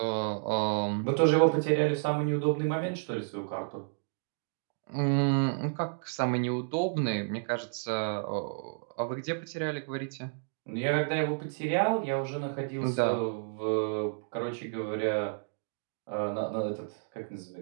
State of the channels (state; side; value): silent; left; digital silence